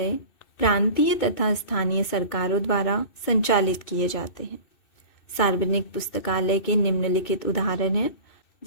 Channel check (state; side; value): late; right; 2.6 ms